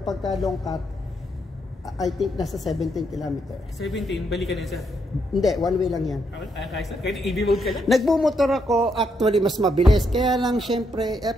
long cut, I think nasa 17 km. 17, balikan yan sir? Hindi, one way lang yan. Kahit EV mode ka lang? Nagbumotor ako, actually mas mabilis. Kaya lang syempre,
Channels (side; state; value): both; normal; correlation 0.77